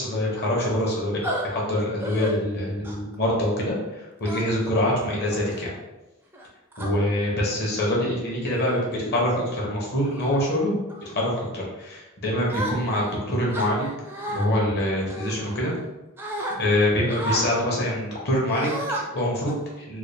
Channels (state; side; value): normal; both; correlation 0.35